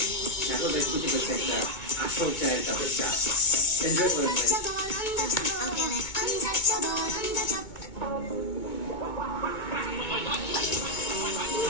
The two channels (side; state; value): right; late; 2.2 ms